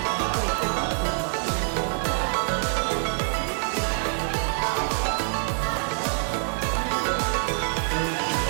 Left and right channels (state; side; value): silent; left; digital silence